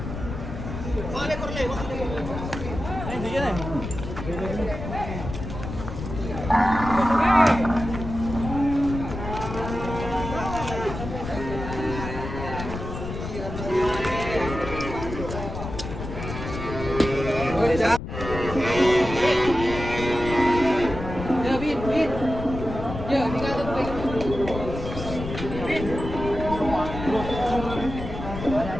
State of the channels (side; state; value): left; noise; rumble, 7 dB below the sound